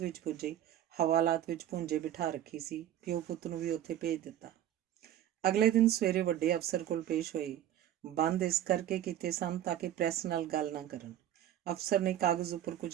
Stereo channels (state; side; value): quieter; left; 11.6 dB